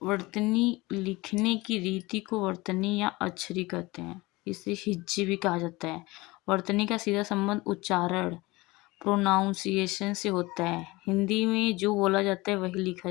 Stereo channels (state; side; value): quieter; right; 21.8 dB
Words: वर्तनी लिखने की रीति को वर्तनी या अक्षरी कहते हैं। इसे हिज्जे भी कहा जाता है। वर्तनी का सीधा संबंध उच्चारण प्रोनाउंसिएशन से होता है। हिंदी में जो बोला जाता है वही लिखा